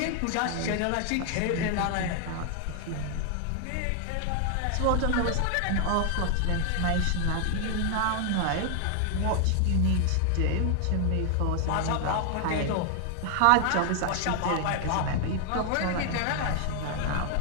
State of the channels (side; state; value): both; different; correlation 0.00